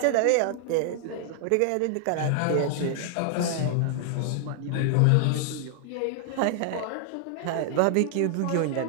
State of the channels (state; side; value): different; both; correlation 0.00